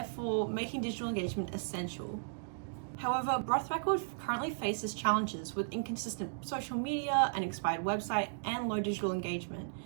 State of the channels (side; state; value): left; silent; digital silence